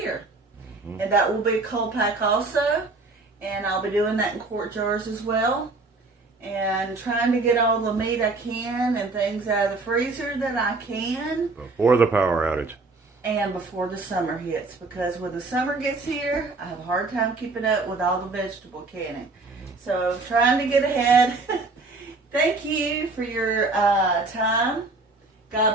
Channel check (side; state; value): left; quieter; 3.5 dB